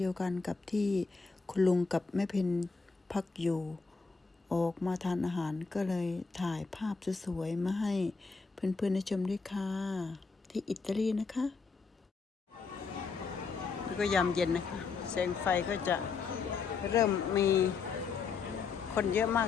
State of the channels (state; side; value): quieter; right; 4.8 dB